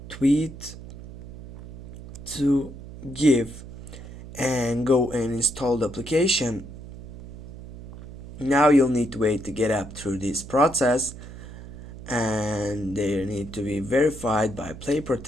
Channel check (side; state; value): right; noise; hum, 13 dB below the sound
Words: tweet to GIF and go and install the application. Now you'll need to wait to get up through this process, and they need to be verified by Play